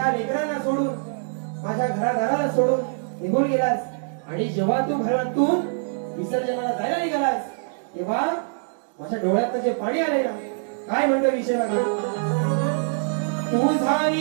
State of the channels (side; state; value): left; silent; digital silence